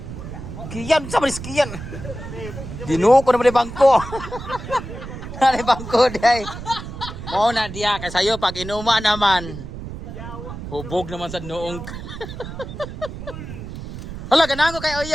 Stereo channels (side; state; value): right; noise; rumble, 10 dB below the sound